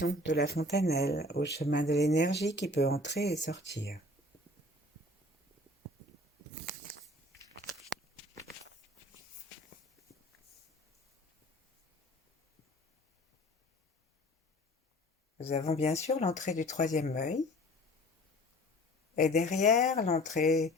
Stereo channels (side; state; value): both; normal; correlation 0.47